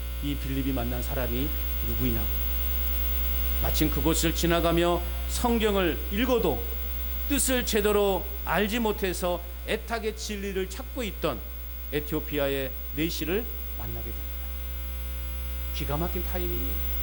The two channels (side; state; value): both; identical; correlation 1.00